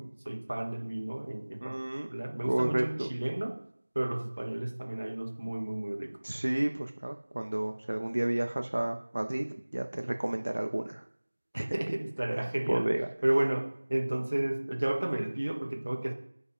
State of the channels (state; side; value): inverted; both; correlation -1.00